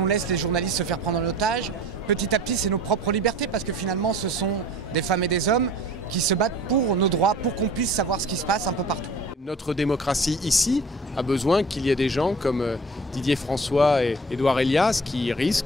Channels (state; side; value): normal; both; correlation 0.44